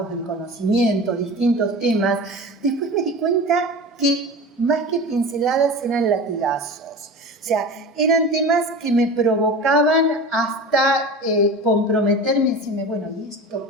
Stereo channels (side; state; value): both; normal; correlation 0.32